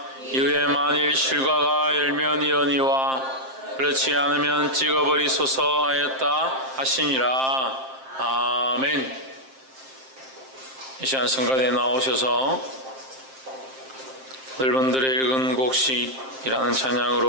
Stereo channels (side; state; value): left; late; 7.6 ms